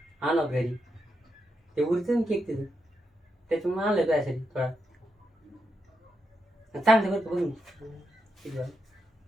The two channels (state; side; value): normal; both; correlation 0.83